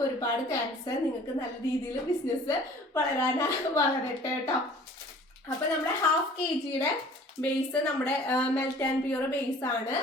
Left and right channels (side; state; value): both; normal; correlation 0.49